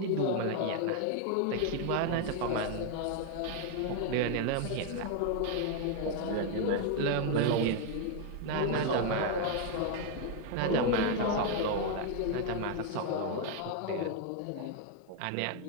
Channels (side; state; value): both; different; correlation 0.00